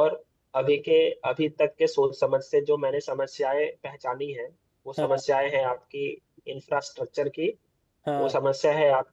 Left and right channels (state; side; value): identical; both; correlation 1.00